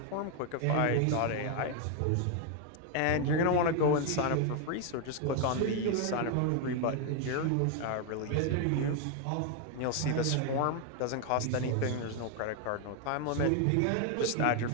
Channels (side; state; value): both; different; correlation 0.01